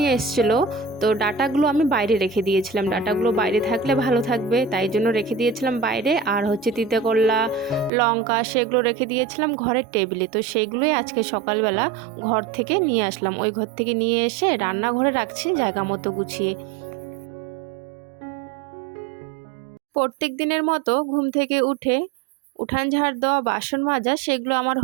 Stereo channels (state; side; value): drops out; left; at 7.9 s